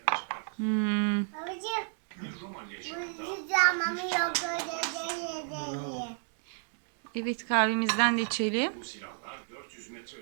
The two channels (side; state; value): left; silent; digital silence